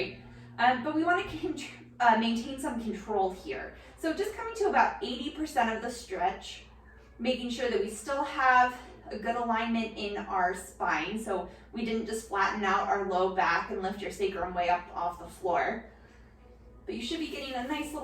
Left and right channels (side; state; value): both; identical; correlation 1.00